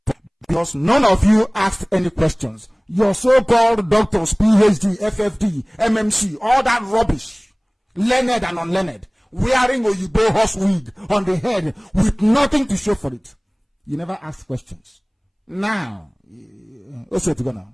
because none of you asked any questions. Your so-called doctors, PhD, FFD, MMC, all that rubbish, learned and unlearned, wearing Oyibo horse wig on the head with nothing to show for it. You never asked questions. Now, also to go now.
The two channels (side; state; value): both; identical; correlation 1.00